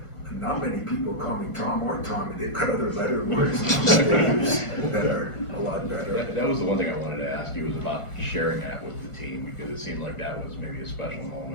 Not many people call me Tom or Tommy. They've got other letter words that are a lot better. That was the one thing I wanted to ask you, was about sharing that with the team, because it seemed like that was maybe a special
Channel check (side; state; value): right; late; 1.5 ms